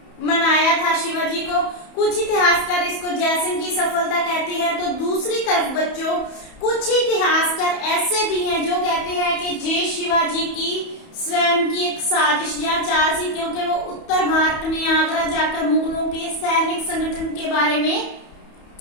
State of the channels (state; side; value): late; right; 31 ms